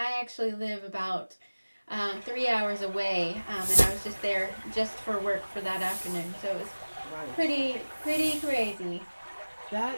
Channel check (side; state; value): both; inverted; correlation -1.00